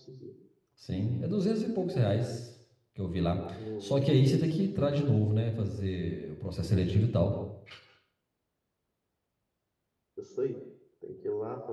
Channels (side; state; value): both; identical; correlation 1.00